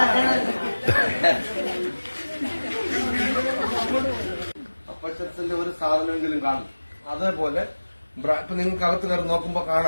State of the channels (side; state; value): both; inverted; correlation -1.00